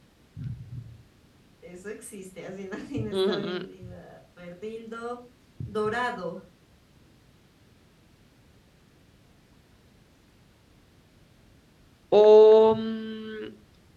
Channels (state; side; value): identical; both; correlation 1.00